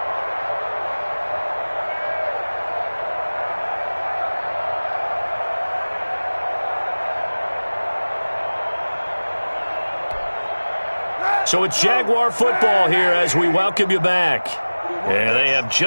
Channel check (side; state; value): both; inverted; correlation -1.00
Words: So it's Jaguar football here as we welcome you back. And they have